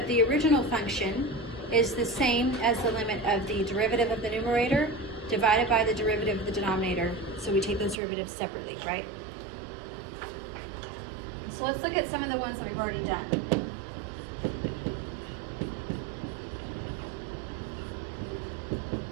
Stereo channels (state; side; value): drops out; left; at 8.0 s